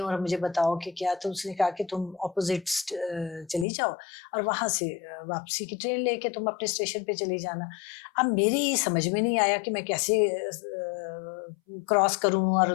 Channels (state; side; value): drops out; right; at 3.7 s